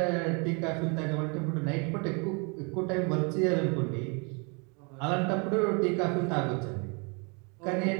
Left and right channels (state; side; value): quieter; left; 33.3 dB